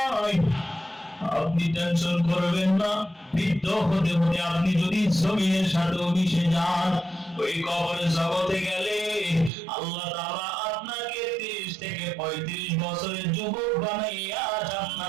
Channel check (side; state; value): left; drops out; at 9.5 s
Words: আপনি টেনশন করবেন না। বৃদ্ধ হতে হতে আপনি যদি জমিনের সাথে মিশে যান, ওই কবরের জগতে গেলে আল্লাহ তাআলা আপনাকে 30 থেকে 35 বছরের যুবক বানাইয়া